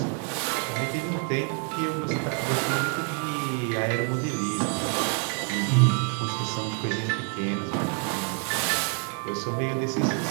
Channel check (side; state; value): left; quieter; 37.0 dB